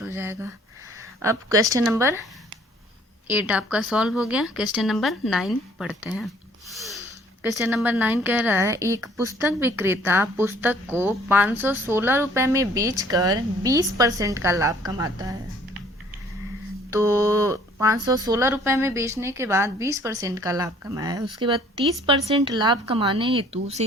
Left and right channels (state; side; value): normal; both; correlation 0.58